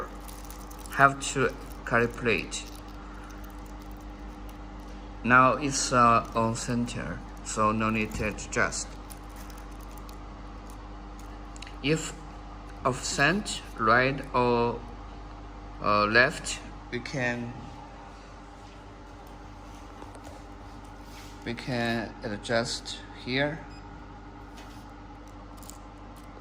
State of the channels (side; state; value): both; identical; correlation 1.00